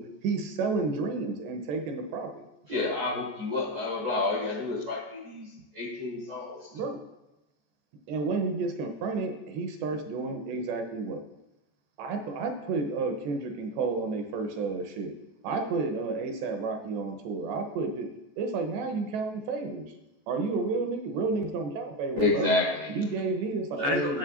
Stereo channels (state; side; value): late; left; 14 ms